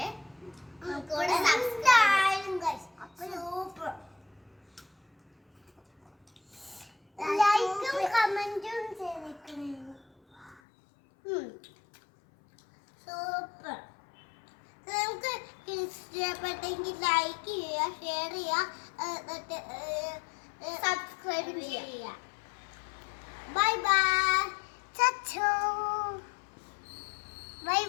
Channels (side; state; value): right; drops out; at 10.6 s